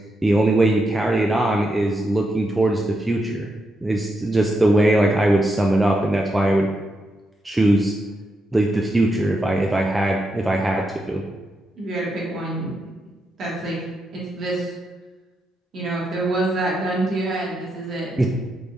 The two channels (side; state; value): both; normal; correlation 0.83